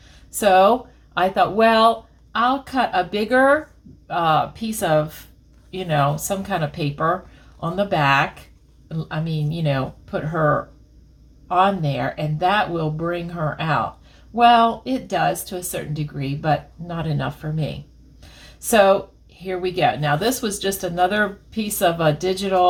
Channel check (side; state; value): both; identical; correlation 1.00